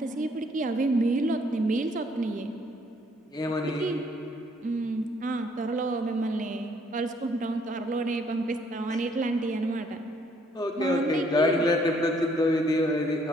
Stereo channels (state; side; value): normal; both; correlation 0.66